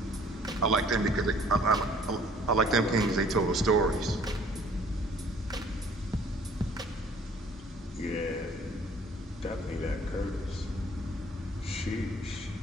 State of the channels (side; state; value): both; normal; correlation 0.55